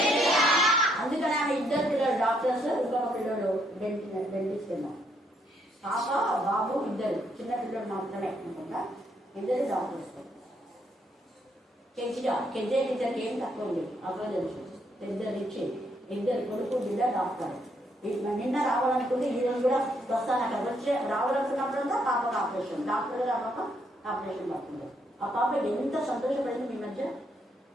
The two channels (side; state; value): both; normal; correlation 0.73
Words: అందుకని ఆమె ఇద్దరు పిల్లలు డాక్టర్స్, ఇంకొక పిల్లలు డెంటిస్ట్ ఏమో. పాప బాబు ఇద్దరు చిన్న పిల్లలు మాత్రమే అనుకుంటా, ఇద్దరు డాక్టర్స్. కెజే ఇద్దరికి ఏం తక్కువ లేదు. అప్పుడు తెలుసు ఇద్దరు ఇచ్చి ఇద్దరు కొడుకు బిడ్డ డాక్టర్. నిన్న రావాలనుకుంటే ఈ రోజు కూడా వస్తాను. అక్కడ వచ్చి రావాలనుకున్నప్పుడంతా పాపకు ఆపరేషన్, డాక్టర్ గారు పాప ఆపరేషన్ పడుతుంది. ఆ పాప ఎంత సంతోషపడింది మీ మధ్య.